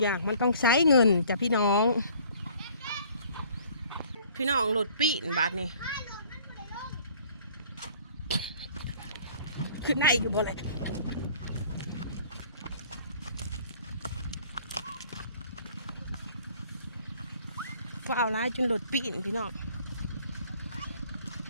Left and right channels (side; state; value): both; inverted; correlation -0.54